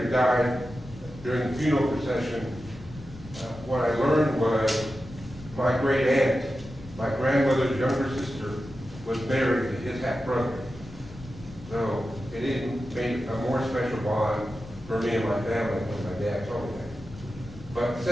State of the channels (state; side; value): noise; left; rumble, 17 dB below the sound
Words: he died, during the funeral procession, what I learned was my great aunt, my grandmother's younger sister, was married to his half brother. So it even made a more special bond for me and my family when my dad told me that. But